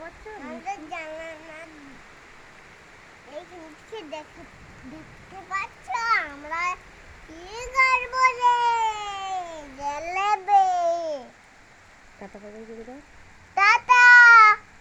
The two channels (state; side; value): identical; both; correlation 1.00